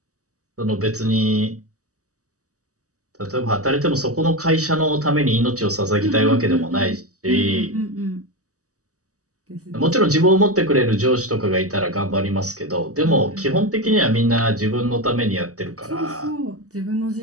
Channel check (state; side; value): late; left; 0.66 ms